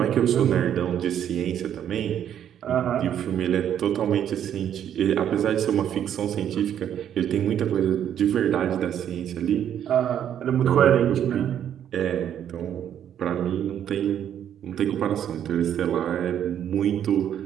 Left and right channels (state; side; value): quieter; left; 9.8 dB